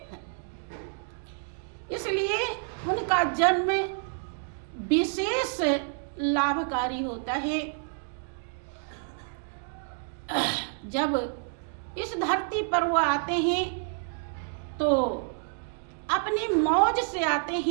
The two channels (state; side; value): silent; left; digital silence